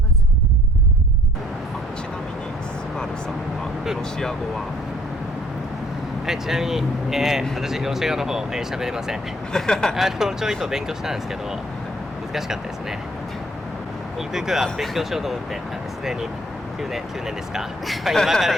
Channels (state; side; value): normal; both; correlation 0.59